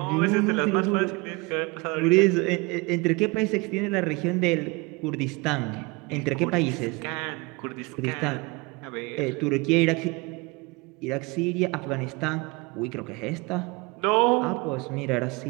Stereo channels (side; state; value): left; quieter; 26.5 dB